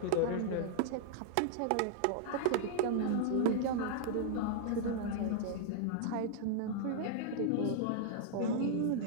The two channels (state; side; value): different; both; correlation -0.02